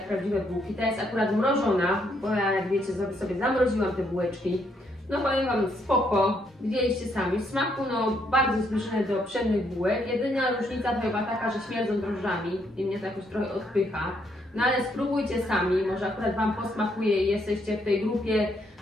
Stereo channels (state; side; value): normal; both; correlation 0.73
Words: prawdziwe bułki. Ta jest akurat mrożona, bo ja, jak wiecie, sobie zamroziłam te bułeczki. No powiem wam, spoko, widzieliście sami. W smaku no bardzo zbliżone do pszennych bułek. Jedyna różnica to chyba taka, że śmierdzą drożdżami i mnie to jakoś trochę odpycha. No ale spróbujcie sami, może akurat wam posmakuje i jesteście w tej grupie